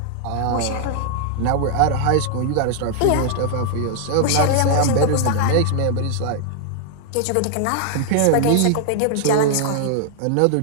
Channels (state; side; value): different; both; correlation 0.00